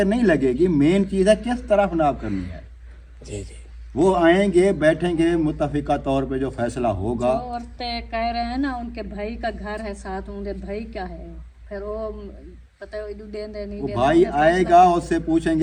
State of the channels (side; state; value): both; identical; correlation 1.00